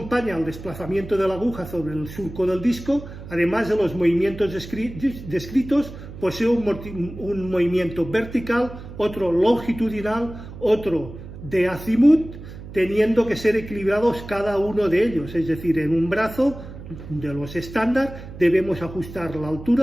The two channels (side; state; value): right; noise; hum, 13 dB below the sound